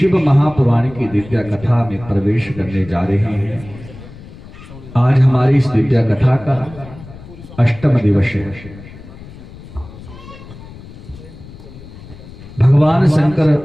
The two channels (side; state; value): left; noise; rumble, 17 dB below the sound